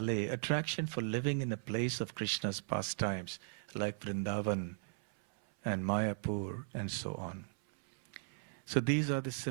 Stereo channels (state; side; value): silent; left; 53 dB below the other